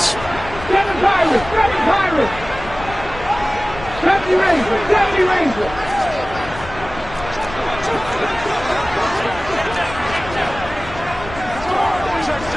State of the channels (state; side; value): noise; left; rumble, 13 dB below the sound